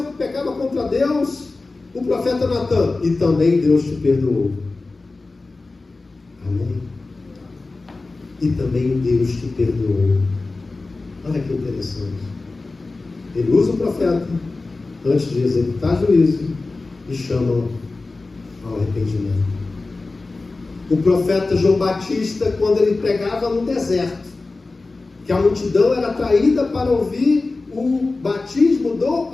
que pecava contra Deus, o profeta Natan: e também Deus te perdoou. Amém? E também Deus te perdoou. Olha que interessante. Ele usa o profeta antes de executar juízo e chama ao arrependimento. O profeta João Batista, quando ele pregava no deserto, que a multidão era atraída para ouvir o batismo do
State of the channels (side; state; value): right; quieter; 3.5 dB